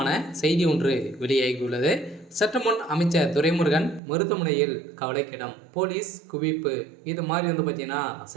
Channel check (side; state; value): left; drops out; at 4.0 s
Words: செய்தி ஒன்று வெளியாகியுள்ளது. சற்று முன் அமைச்சர் துரைமுருகன் மருத்துவமனையில் கவலைக்கிடம், போலீஸ் குவிப்பு, இது மாதிரி பார்த்தீங்கன்னா